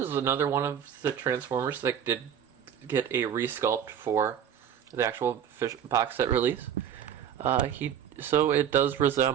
another one of the Transformers that did get a resculpt for the actual box set release. So it does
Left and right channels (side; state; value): left; quieter; 9.1 dB